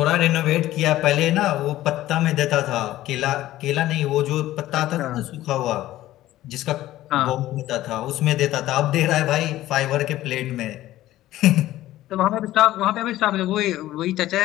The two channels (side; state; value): right; quieter; 15.0 dB